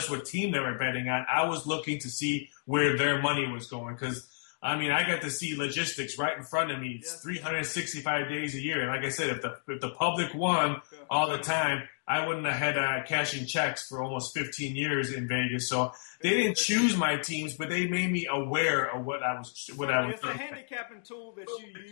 what team they were betting on. I was looking to see where their money was going because, I mean, I got to see logistics right in front of me. It's 365 days a year. And like I said, if the public won all the time, I wouldn't have had cashing checks for almost 15 years in Vegas. So they didn't choose my teams, but they made me aware of what I was. Certainly, it's a handicapping tool that you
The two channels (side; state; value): right; silent; digital silence